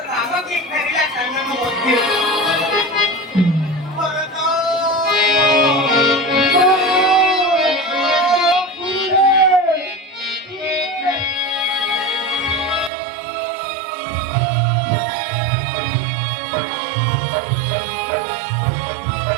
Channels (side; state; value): left; drops out; at 12.9 s